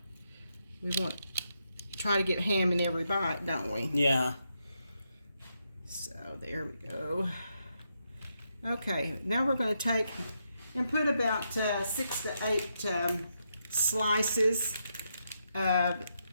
We want to try to get ham in every bite, don't we? Yeah. So there we go. Okay, now we're going to take and put about 6 to 8 slices of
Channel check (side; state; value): both; inverted; correlation -0.82